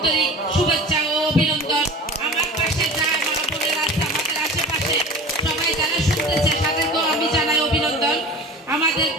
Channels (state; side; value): normal; both; correlation 0.37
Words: শুভেচ্ছা ও অভিনন্দন। আমার পাশে যা মা বোনেরা আছে, আমাদের আশেপাশে সবাই যারা শুনতেছে তাদেরকেও আমি জানাই অভিনন্দন।